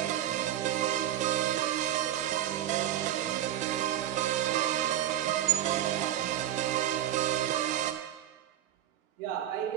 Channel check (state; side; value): quieter; left; 11.8 dB